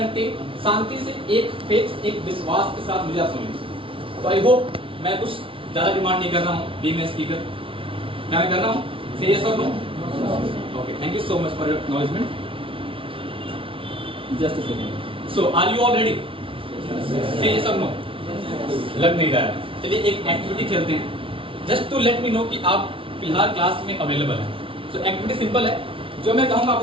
शांति से, एक फेथ, एक विश्वास के साथ मुझे आप सुनिए। तो आई होप मैं कुछ ज़्यादा डिमांड नहीं कर रहा हूँ बीइंग अ स्पीकर। क्या मैं कर रहा हूँ? से यस और no? Okay, thank you so much for your acknowledgement. Just a second. So, are you all ready? Say yes or no. लग नहीं रहा है। चलिए एक एक्टिविटी खेलते हैं, just to let me know कि आप फिलहाल क्लास में अवेलेबल हैं। सो एक्टिविटी सिंपल है, जो मैं कहूँगा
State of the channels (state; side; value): late; left; 0.25 ms